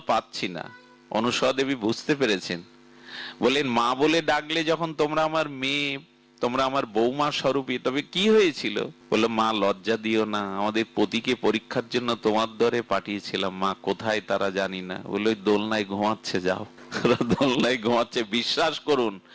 পাচ্ছি না। অনুসূয়া দেবী বুঝতে পেরেছেন, বলেন মা বলে ডাকলে যখন তোমরা আমার মেয়ে, তোমরা আমার বৌমা স্বরূপী, তবে কি হয়েছিল? বললো মা লজ্জা দিও না, আমাদের পতিকে পরীক্ষার জন্য তোমার দরে পাঠিয়েছিলাম, মা কোথায় তারা জানি না। বললো দোলনায় ঘুমাচ্ছে, যাও। দোলনায় ঘুমাচ্ছে। বিশ্বাস করুন,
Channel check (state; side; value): identical; both; correlation 1.00